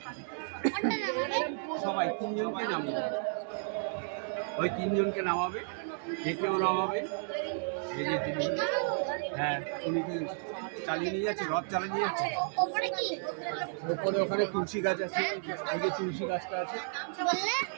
কোনটা নামাবে? সবাই তিনজনকে নামাবে, ওই তিনজনকে নামাবে, দেখেও নামাবে। এই যে তিনি, হ্যাঁ, উনি কি চালিয়ে নিয়ে যাচ্ছে, রথ চালিয়ে নিয়ে যাচ্ছে। ওপরে কি ওপরে ওখানে তুলসী গাছ আছে, ওই যে তুলসী গাছটা আছে, বললে?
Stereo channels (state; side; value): silent; left; digital silence